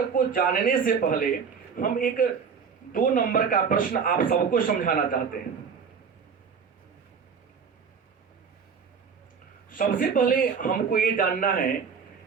को जानने से पहले हम एक 2 नंबर का प्रश्न आप सबको समझाना चाहते हैं। सबसे पहले हमको ये जानना है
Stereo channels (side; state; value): left; quieter; 6.1 dB